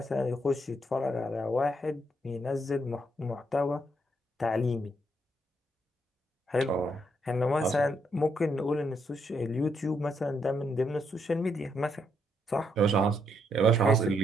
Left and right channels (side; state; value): both; normal; correlation 0.76